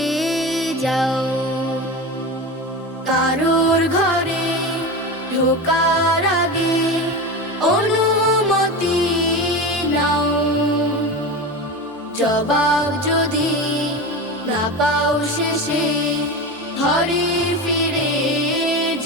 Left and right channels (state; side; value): normal; both; correlation 0.25